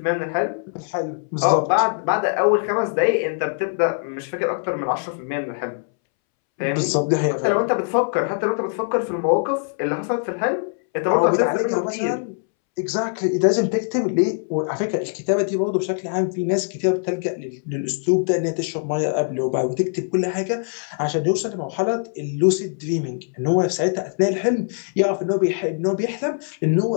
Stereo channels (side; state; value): right; silent; 64 dB below the other